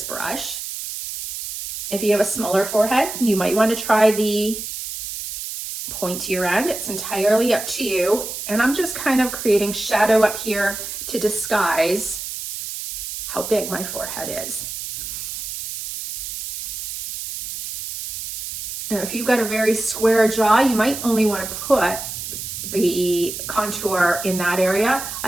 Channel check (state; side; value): noise; right; hiss, 7 dB below the sound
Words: brush. If you have a smaller forehead, you might want to try the pointier end. It's entirely up to you. And I'm just kind of creating shadow up here to disguise how big my forehead is. Now, if you've got a very square jaw, you might only want to put the contour in that area. I